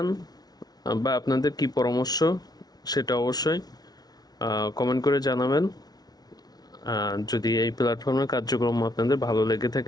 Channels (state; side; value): late; right; 0.19 ms